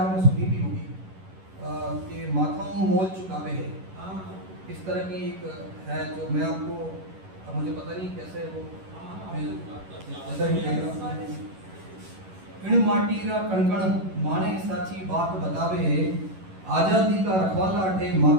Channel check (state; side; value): late; left; 11 ms